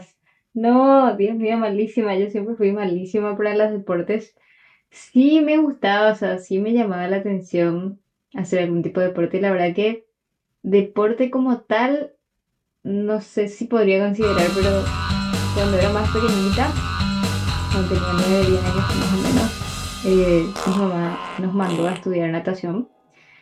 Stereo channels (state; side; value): identical; both; correlation 1.00